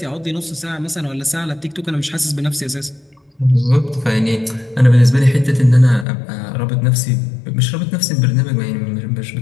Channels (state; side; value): drops out; right; at 6.1 s